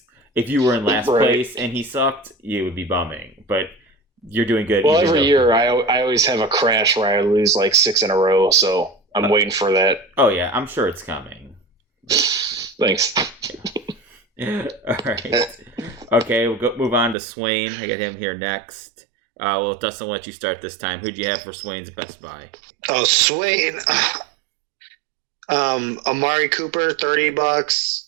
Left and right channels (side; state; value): left; drops out; at 17.2 s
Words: if you were in last place and he sucked, you would be bumming. But you're doing good. Well, every year I always have a crash where I lose like 6 in a row. So I'm waiting for that. Oh, yeah, I'm sure it's coming. Thanks. All right. Okay, we'll move on to Swain. I got him here next. Dustin, I'll let you start this time. Who'd you have for Swain's best buy? Oh, Swain. Amari Cooper,